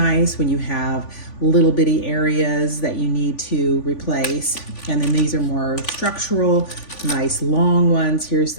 when you have little bitty areas that you need to replace. And then these are more structural, nice long ones. Here's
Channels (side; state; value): right; late; 3.5 ms